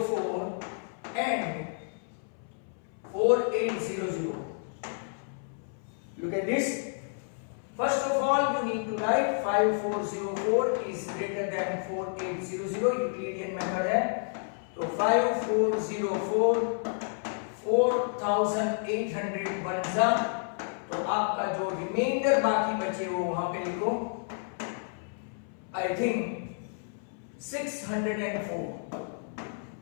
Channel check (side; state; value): right; silent; 58 dB below the other